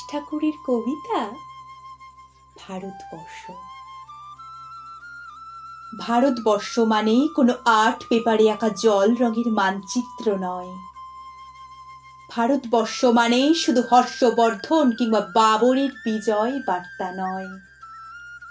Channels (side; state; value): both; identical; correlation 1.00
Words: ঠাকুরের কবিতা ভারতবর্ষ। ভারতবর্ষ মানে কোনো আর্ট পেপারে আঁকা জল রঙের মানচিত্র নয়। ভারতবর্ষ মানে শুধু হর্ষবর্ধন কিংবা বাবরের বিজয় বার্তা নয়।